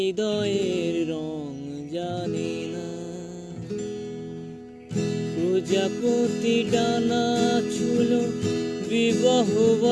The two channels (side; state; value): both; identical; correlation 1.00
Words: রং জানে না। প্রজাপতি ডানা ছিল বিবাহ